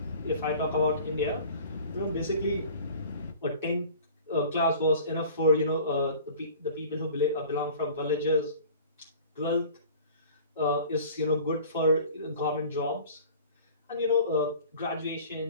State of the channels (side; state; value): both; inverted; correlation -0.44